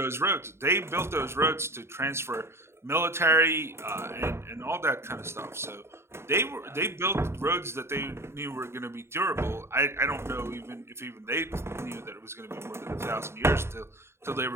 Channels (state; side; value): late; left; 0.12 ms